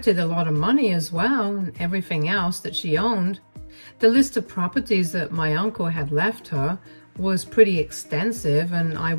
a lot of money as well, and everything else that she owned. The list of properties that my uncle had left her was pretty extensive, and I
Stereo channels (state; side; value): inverted; both; correlation -1.00